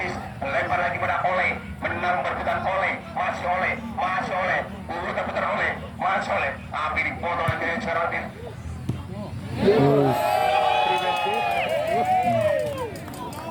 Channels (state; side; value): identical; both; correlation 1.00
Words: lempar lagi pada Oleh menang berputar Oleh masih Oleh putar-putar Oleh masih Oleh tapi dipotong lagi dari Ceraldin